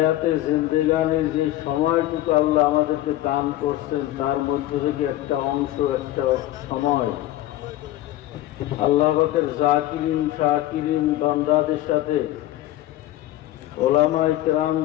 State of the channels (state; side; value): quieter; right; 14.9 dB